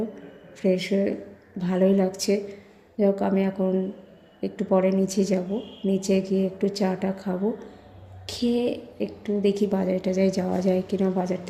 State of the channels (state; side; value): identical; both; correlation 1.00